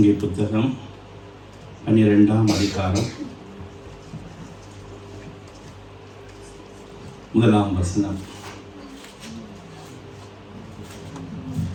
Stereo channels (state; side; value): identical; both; correlation 1.00